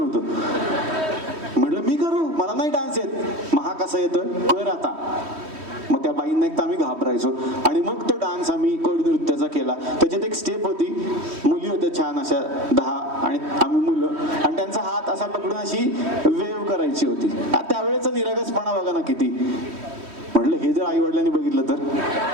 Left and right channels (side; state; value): left; late; 3.1 ms